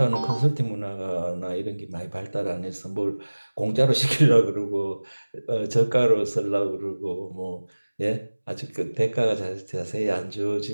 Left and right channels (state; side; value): inverted; both; correlation -1.00